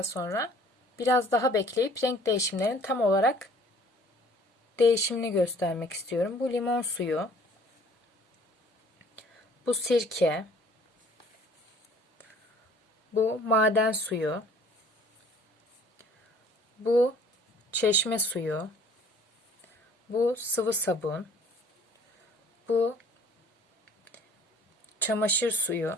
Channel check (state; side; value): normal; both; correlation 0.54